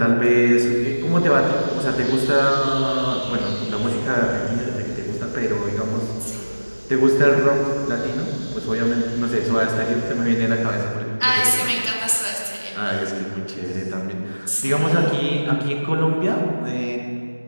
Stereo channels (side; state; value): both; inverted; correlation -1.00